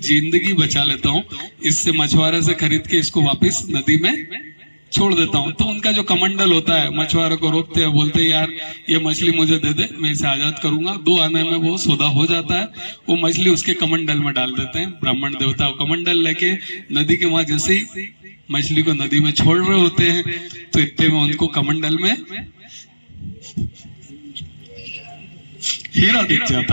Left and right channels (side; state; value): both; inverted; correlation -1.00